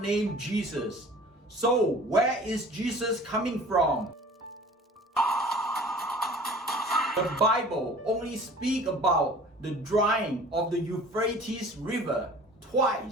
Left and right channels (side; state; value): both; normal; correlation 0.45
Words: Jesus. So, where is Jesus coming from? The Bible only speaks about the drying of the Euphrates River